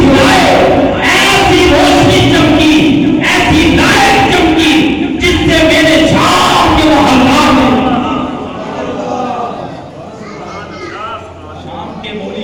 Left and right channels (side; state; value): both; identical; correlation 1.00